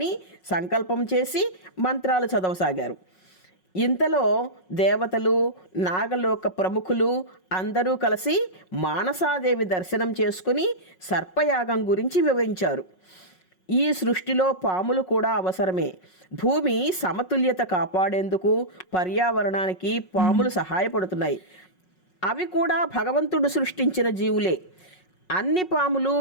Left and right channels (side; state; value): right; late; 5.4 ms